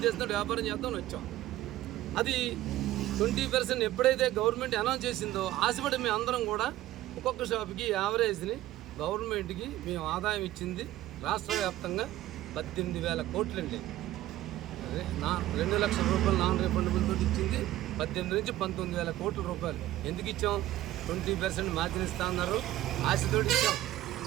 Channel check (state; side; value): quieter; left; 14.8 dB